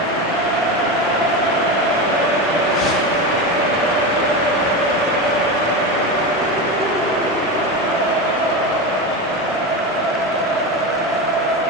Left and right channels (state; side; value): normal; both; correlation 0.20